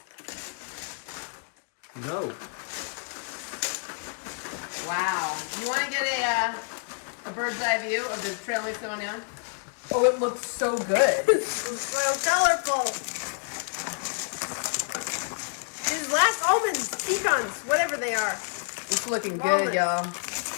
No. Wow. You want to get a bird's eye view of the trail mix going down? Oh, it looks so good. It's so colorful. These last almonds, pecans, whatever they are. It's looking good, y'all.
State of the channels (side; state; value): right; silent; 57 dB below the other